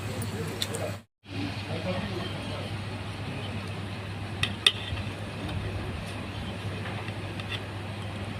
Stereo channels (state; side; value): identical; both; correlation 1.00